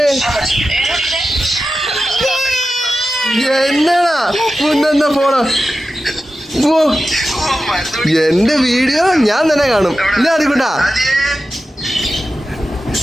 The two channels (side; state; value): both; normal; correlation 0.92